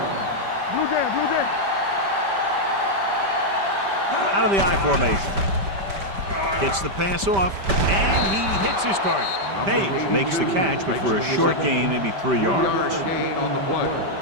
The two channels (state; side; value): late; left; 5.1 ms